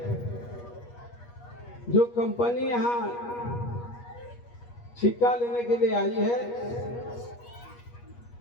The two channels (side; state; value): right; late; 8.4 ms